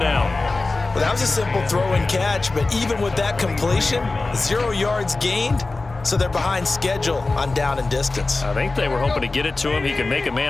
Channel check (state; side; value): quieter; right; 3.4 dB